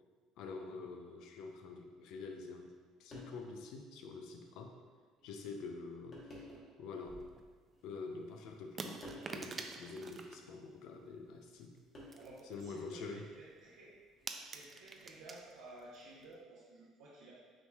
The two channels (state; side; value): normal; both; correlation 0.62